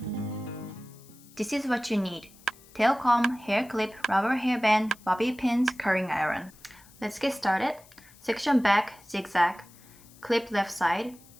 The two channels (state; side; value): noise; left; hiss, 24 dB below the sound